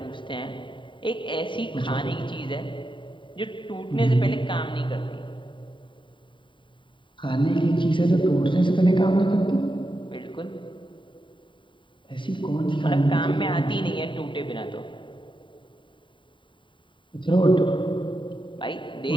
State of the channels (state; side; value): late; right; 0.24 ms